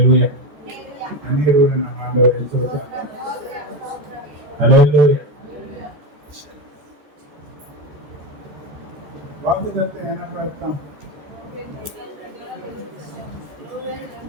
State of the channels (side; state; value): left; late; 14 ms